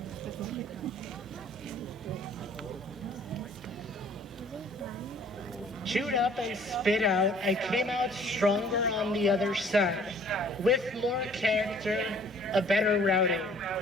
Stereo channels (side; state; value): both; normal; correlation 0.55